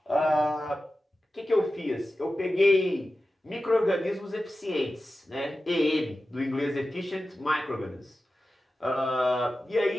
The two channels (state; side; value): normal; both; correlation 0.94